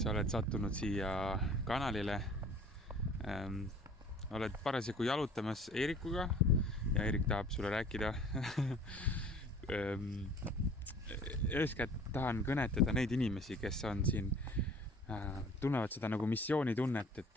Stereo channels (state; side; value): normal; both; correlation 0.49